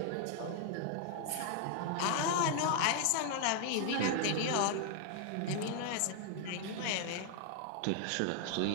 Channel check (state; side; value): different; both; correlation 0.00